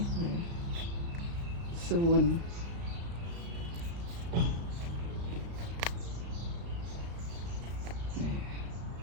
សួន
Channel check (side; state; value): left; late; 35 ms